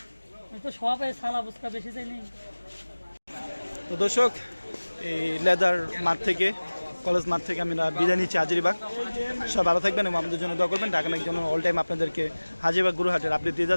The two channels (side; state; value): both; inverted; correlation -1.00